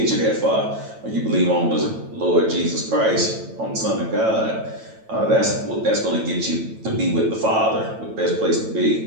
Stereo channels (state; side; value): late; left; 9.0 ms